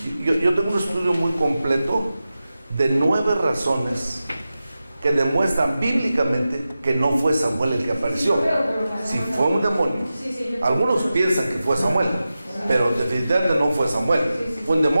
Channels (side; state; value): both; inverted; correlation -0.93